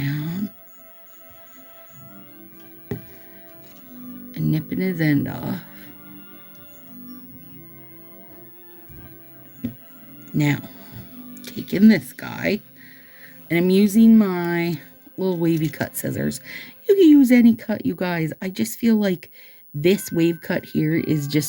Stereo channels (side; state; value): both; identical; correlation 1.00